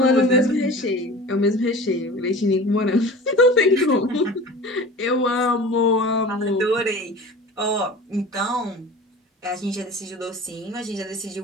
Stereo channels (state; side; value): normal; both; correlation 0.38